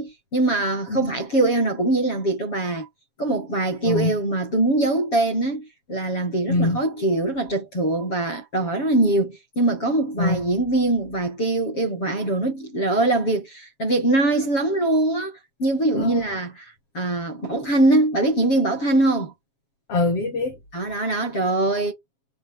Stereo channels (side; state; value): right; late; 7.4 ms